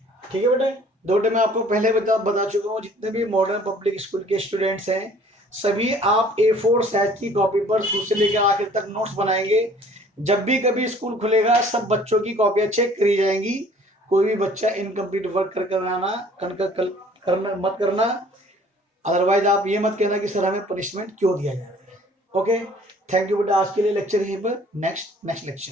ठीक है बेटा, दो मैं आपको पहले बता चुका हूँ, जितने भी मॉडर्न पब्लिक स्कूल के स्टूडेंट्स हैं सभी आप A4 साइज की कॉपी पर शुरू से लेकर आखिर तक नोट्स बनाएंगे। जब भी कभी स्कूल खुलेगा सब बच्चों की कॉपियां चेक करी जाएंगी। कोई भी बच्चा इनकम्प्लीट वर्क करना मत करना, अदरवाइज आप ये मत कहना कि सर हमें पनिशमेंट क्यों दिया जा रहा है। ओके, थैंक यू बेटा। आज के लिए लेक्चर यहीं पर, next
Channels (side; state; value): both; normal; correlation 0.54